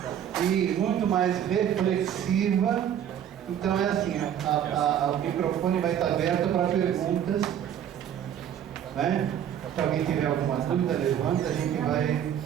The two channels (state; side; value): quieter; left; 9.7 dB